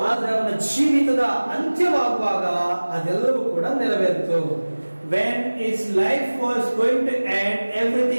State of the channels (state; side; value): inverted; both; correlation -1.00